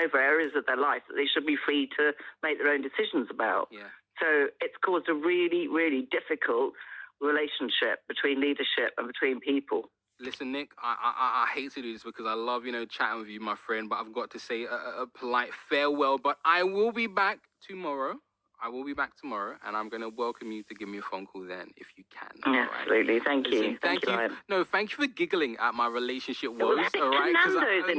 areas of their life that they should be free to make their own decisions about. So it's caused a really, really difficult relationship between leadership and between people. Listen, Nick, I hate to do this because I love, chatting with you, my friend, but I've got to say a polite farewell. But I will be back tomorrow. And I'm going to welcome you to give me a phone call then, if you can. Absolutely. Thank you. Thank you. No, thank you for giggling at my relationship woes. All right. Nando's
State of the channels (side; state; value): both; identical; correlation 1.00